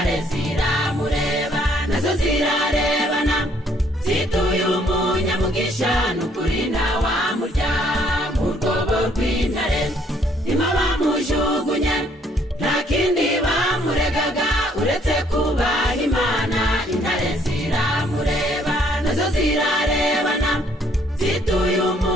ziramureba nazo zirarebana zituye umunyamugisha n'ukuri ntawamurya mu rwobo rw'intare. Nimo bamujugunye nta kindi bamuregaga uretse kubaha Imana. Intare ziramureba nazo zirarebana zituye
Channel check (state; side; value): normal; both; correlation 0.65